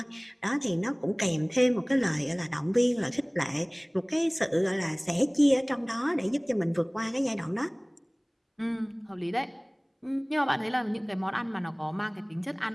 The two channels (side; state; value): both; identical; correlation 1.00